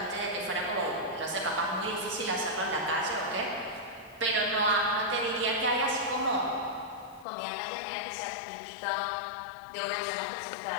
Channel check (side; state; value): right; drops out; at 7.2 s